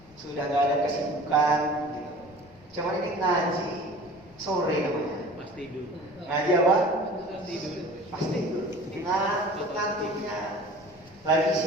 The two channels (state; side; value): noise; left; rumble, 25 dB below the sound